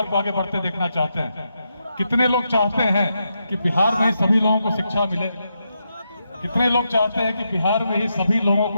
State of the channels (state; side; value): inverted; both; correlation -0.84